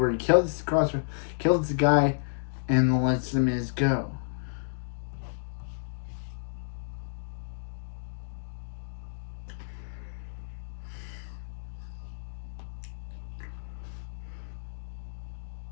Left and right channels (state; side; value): silent; right; digital silence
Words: he kills the guy, and lets the Miz go.